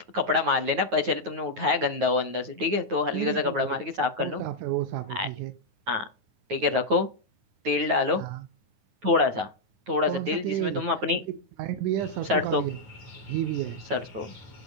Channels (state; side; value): late; left; 9.3 ms